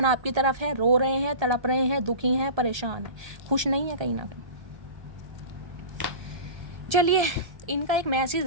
आपकी तरफ है, रो रहे हैं, तड़प रहे हैं, दुखी हैं, परेशान हैं, खुश नहीं है कहीं ना कहीं। चलिए इनका एक मैसेज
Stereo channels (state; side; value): late; left; 1.3 ms